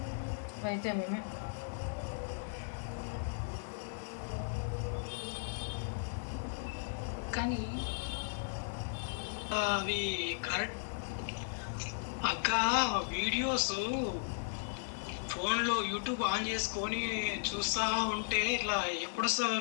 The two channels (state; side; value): silent; right; digital silence